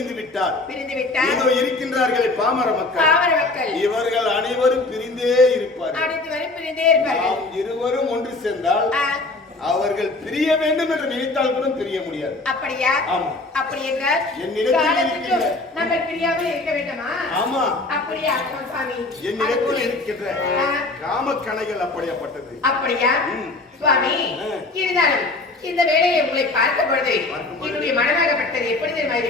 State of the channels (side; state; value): right; quieter; 3.2 dB